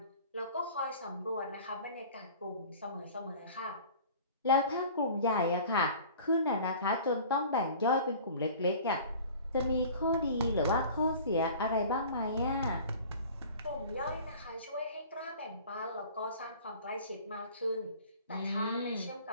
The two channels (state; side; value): inverted; both; correlation -0.44